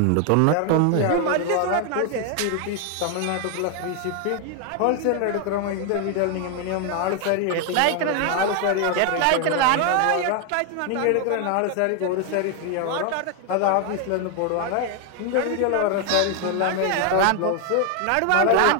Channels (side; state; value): both; different; correlation 0.00